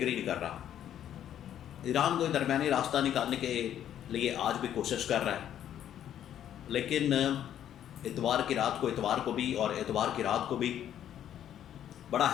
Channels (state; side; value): quieter; right; 10.5 dB